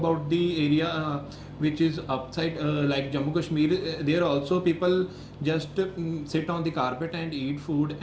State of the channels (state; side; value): identical; both; correlation 1.00